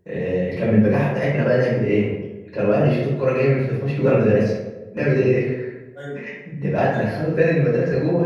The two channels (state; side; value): identical; both; correlation 1.00